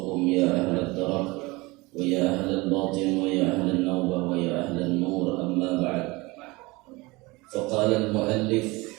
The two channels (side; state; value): left; quieter; 23.3 dB